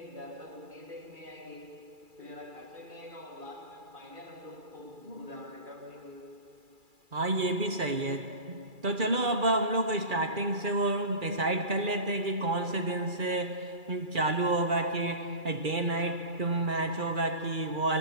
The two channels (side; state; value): left; late; 2.3 ms